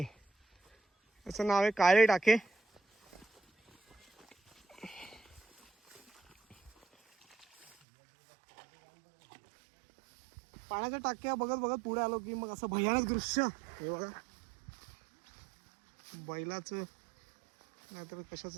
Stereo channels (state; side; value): drops out; left; at 7.7 s